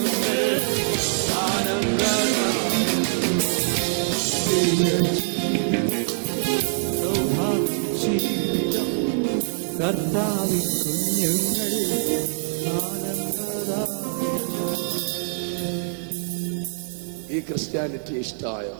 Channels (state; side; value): silent; left; digital silence